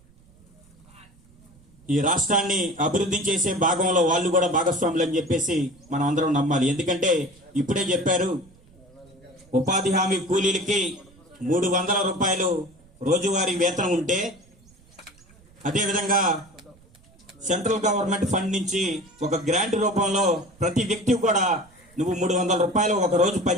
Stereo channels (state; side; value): noise; right; rumble, 28 dB below the sound